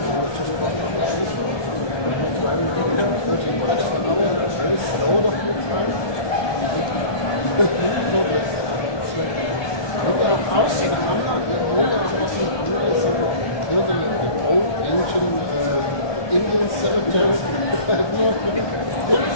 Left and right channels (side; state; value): right; late; 1.2 ms